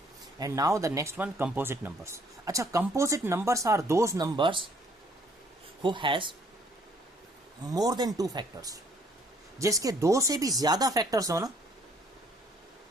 And now the next one, composite numbers. अच्छा, composite numbers are those numbers who has more than 2 factors. जिसके 2 से भी ज्यादा फैक्टर्स हो ना,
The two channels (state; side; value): normal; both; correlation 0.63